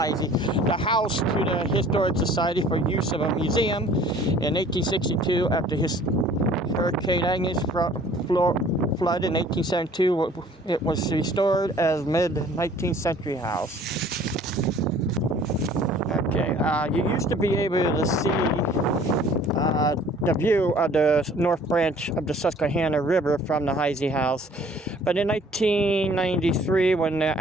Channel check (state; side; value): normal; both; correlation 0.53